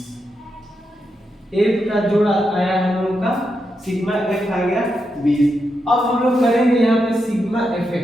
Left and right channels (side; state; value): both; normal; correlation 0.85